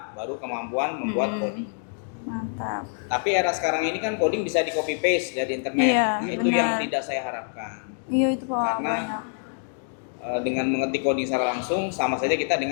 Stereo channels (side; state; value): right; silent; digital silence